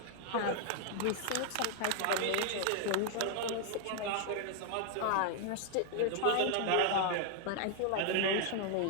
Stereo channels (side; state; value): both; different; correlation 0.00